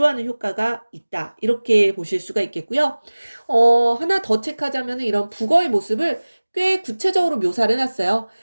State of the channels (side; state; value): both; inverted; correlation -1.00